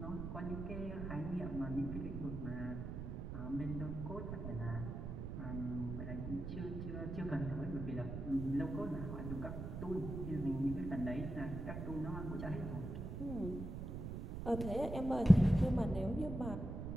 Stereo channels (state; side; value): noise; right; rumble, 5 dB below the sound